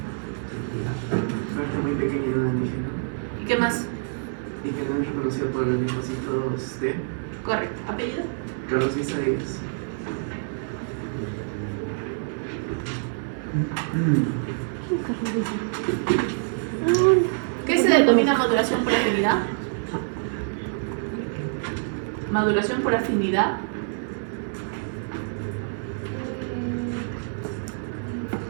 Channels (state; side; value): silent; left; 61 dB below the other